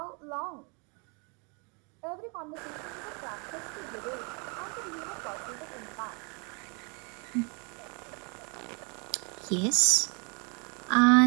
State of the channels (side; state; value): left; quieter; 33.6 dB